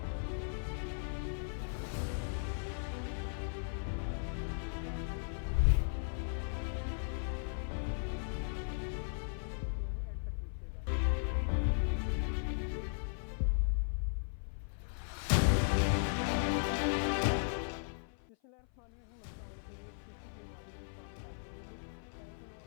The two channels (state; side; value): silent; right; 53 dB below the other